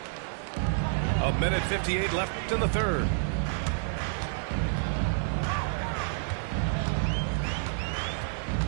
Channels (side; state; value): left; silent; digital silence